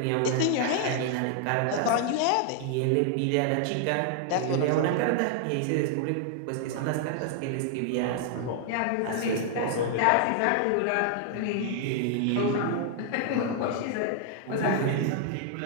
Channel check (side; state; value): both; different; correlation 0.00